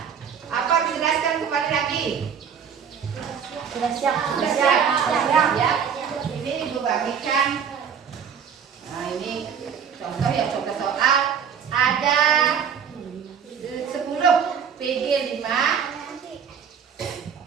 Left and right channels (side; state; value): left; quieter; 7.4 dB